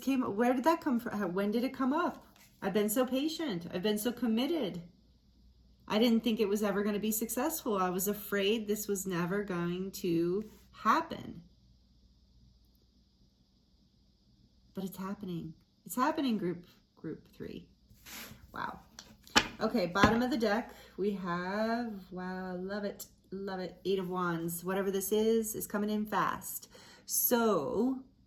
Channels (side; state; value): both; identical; correlation 1.00